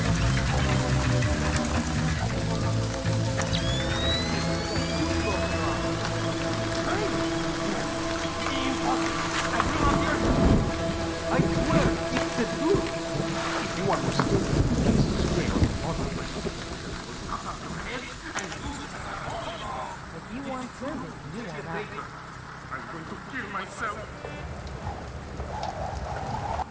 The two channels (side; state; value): both; identical; correlation 1.00